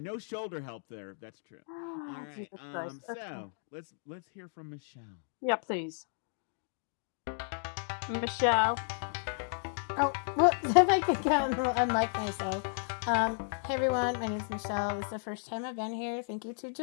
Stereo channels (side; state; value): right; silent; digital silence